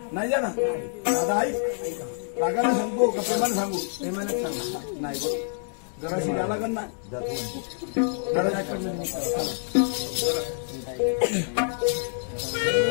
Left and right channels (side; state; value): right; silent; digital silence